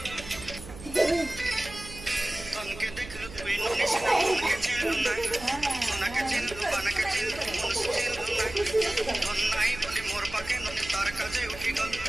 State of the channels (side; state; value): right; noise; hum, 15 dB below the sound